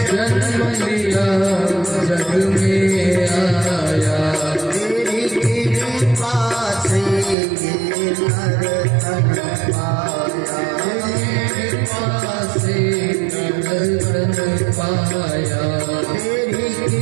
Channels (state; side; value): drops out; left; at 7.4 s